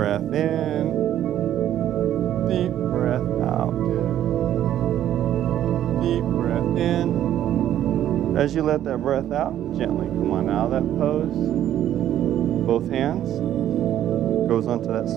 in, deep breath out. Deep breath in. As you let that breath out, gently come on out of that pose. Both hands. Goes onto that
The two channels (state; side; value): quieter; left; 11.5 dB